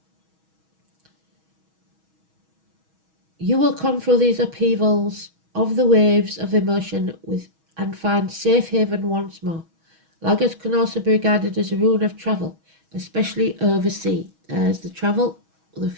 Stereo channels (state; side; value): late; left; 6.3 ms